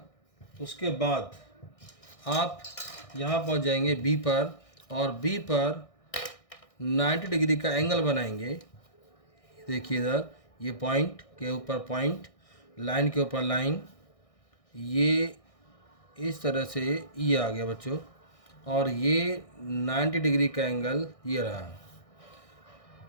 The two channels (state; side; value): late; right; 1.6 ms